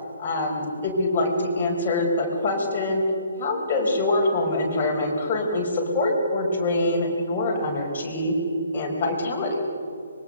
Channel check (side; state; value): both; inverted; correlation -0.57